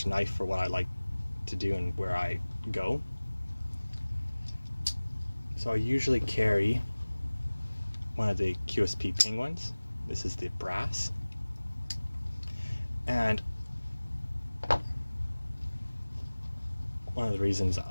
knife for what I like to do and where I go. So I usually carry one of the QSP Penguins. This is the brass. And one of the reasons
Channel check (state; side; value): inverted; both; correlation -1.00